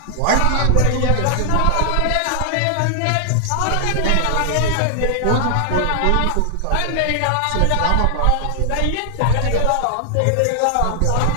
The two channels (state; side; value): different; both; correlation 0.00